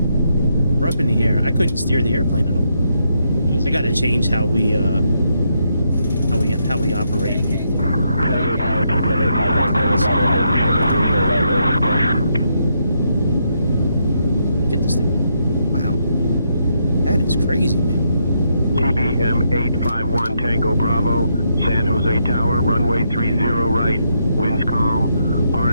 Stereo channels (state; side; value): inverted; both; correlation -0.78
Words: We're up in the air. I couldn't steer the airplane at all. I gotta change how we operate. Get this thing. Wow. That is crazy, man. TBM 851 Tango Bravo, San Jose Tower, runway 30 right, winds calm,